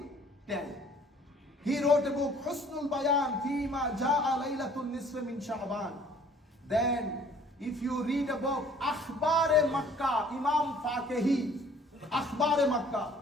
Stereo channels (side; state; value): both; normal; correlation 0.55